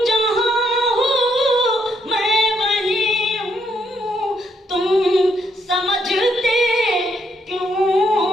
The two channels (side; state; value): both; normal; correlation 0.74